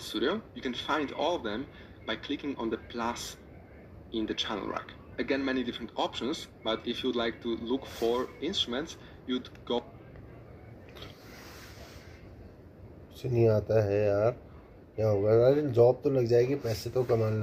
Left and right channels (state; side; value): identical; both; correlation 1.00